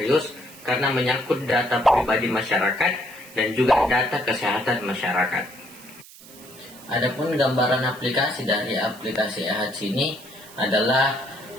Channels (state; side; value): noise; right; hiss, 20 dB below the sound